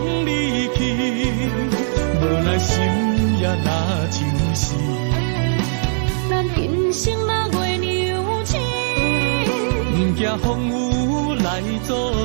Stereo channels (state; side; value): silent; left; digital silence